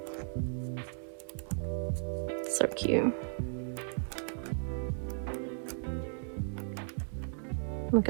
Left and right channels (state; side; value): silent; left; digital silence